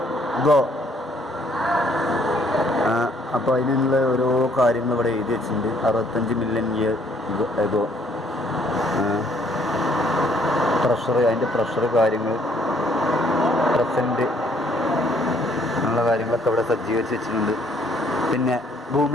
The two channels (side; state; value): both; normal; correlation 0.64